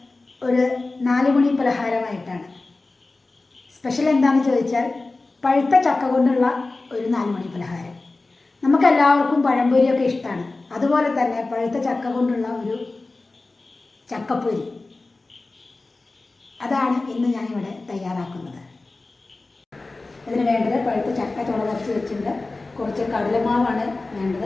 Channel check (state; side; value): quieter; right; 3.4 dB